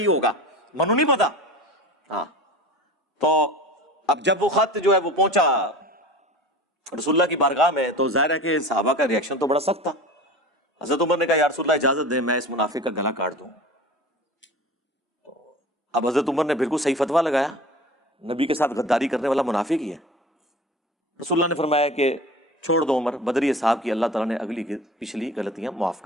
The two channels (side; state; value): both; normal; correlation 0.36